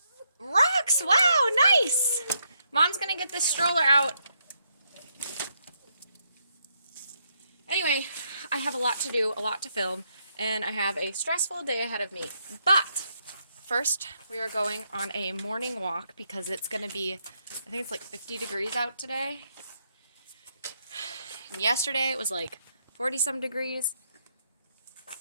Rocks! Wow, nice! Mom's going to get this stroller out. Anyway, I have a lot to do, a lot to film, and I have a stressful day ahead of me. But first, we are going on a morning walk because it's going to be, I think it's like 50 degrees out today. And yesterday it was like 40 some degrees.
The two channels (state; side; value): inverted; both; correlation -0.77